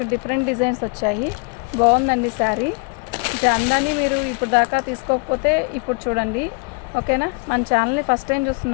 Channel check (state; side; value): quieter; right; 31.3 dB